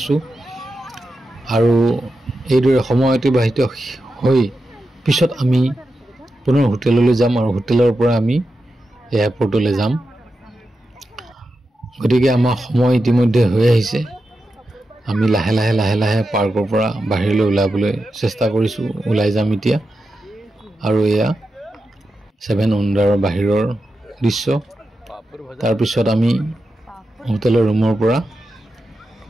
আৰু এইদৰে সময় অতিবাহিত হৈ পিছত আমি পুনৰ হোটেললৈ যাম আৰু হোটেলৰ পৰা আমি এয়াৰপৰ্টলৈ যাম। গতিকে আমাৰ সময় ইতিমধ্যে হৈ আহিছে। আমি লাহে লাহে পাৰ্কৰ পৰা বাহিৰলৈ ওলাবলৈ চেষ্টা কৰিছোঁ। ওলাই যাম এতিয়া। আৰু এয়া 7 উণ্ডাৰৰ বাহিৰৰ দৃশ্য। তাৰপিছত আমি হোটেলৰ ৰুমৰ পৰা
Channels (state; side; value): normal; both; correlation 0.89